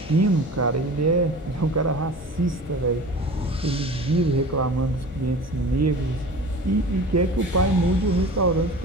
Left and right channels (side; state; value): both; normal; correlation 0.38